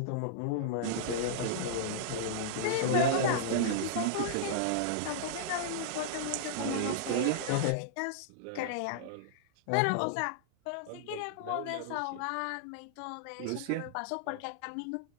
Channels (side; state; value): both; different; correlation -0.02